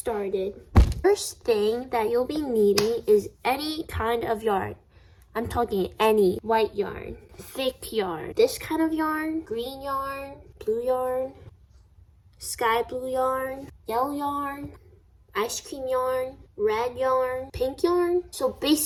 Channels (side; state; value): both; identical; correlation 1.00